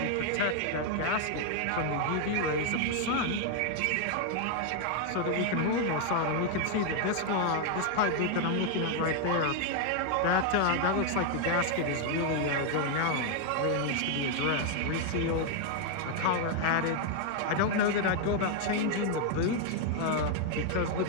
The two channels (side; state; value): both; different; correlation 0.00